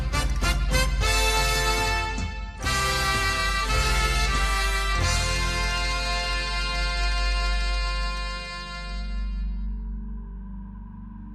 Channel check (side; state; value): both; identical; correlation 1.00